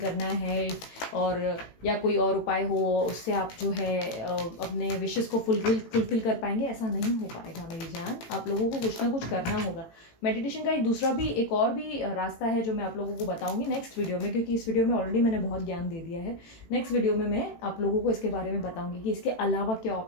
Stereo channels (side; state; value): right; late; 18 ms